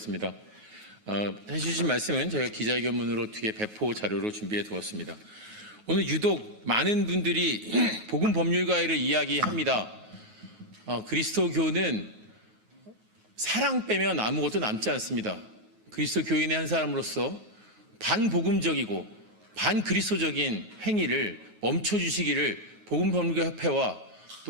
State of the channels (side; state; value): left; late; 9.4 ms